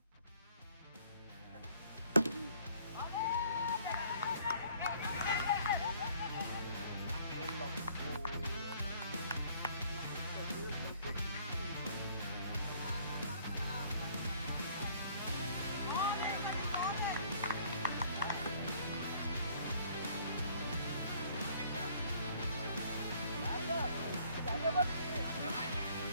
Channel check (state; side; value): inverted; both; correlation -0.59